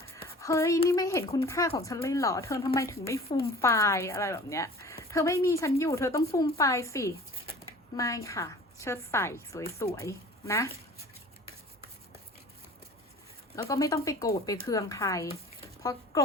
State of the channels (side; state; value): both; normal; correlation 0.44